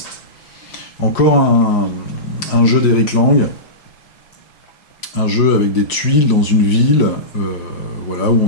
Encore un jeu d'Eric Lang, un jeu avec des tuiles dans une ville, voilà, où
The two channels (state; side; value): late; right; 6.0 ms